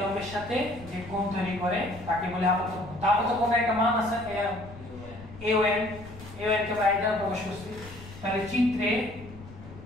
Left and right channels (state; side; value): noise; left; rumble, 16 dB below the sound